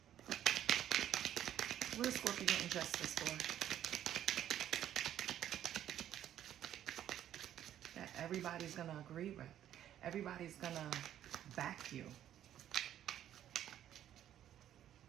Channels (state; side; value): quieter; left; 11.2 dB